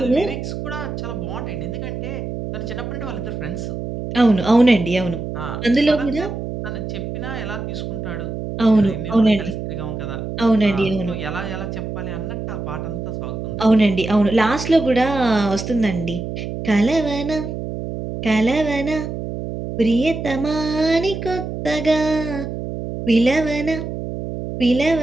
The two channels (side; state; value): right; noise; hum, 6 dB below the sound